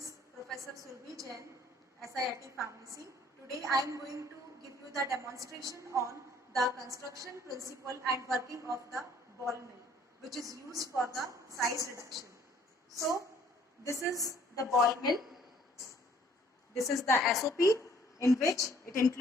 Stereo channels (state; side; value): normal; both; correlation 0.59